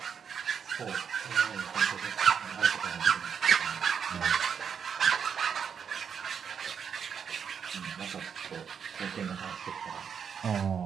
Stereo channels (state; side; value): quieter; left; 7.2 dB